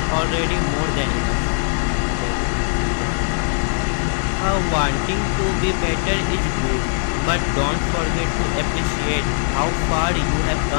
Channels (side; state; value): right; silent; digital silence